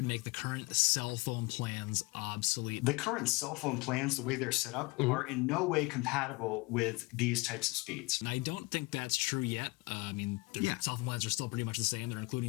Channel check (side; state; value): right; quieter; 24.5 dB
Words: make the current cell phone plans obsolete. The current cell phone plans, the way they're set up, are in no way compatible with these types of speeds. And I don't think that's true yet. I mean, their cell phone plans are still pretty much the same. They're